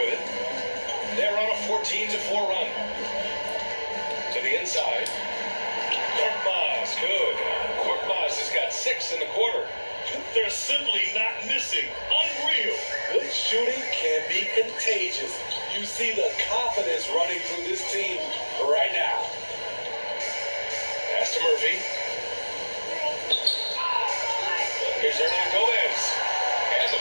shooting can be contagious. You see the confidence running through this team right now. Pass to Murphy. Here's Hernan Gomez. And the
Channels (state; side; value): inverted; both; correlation -1.00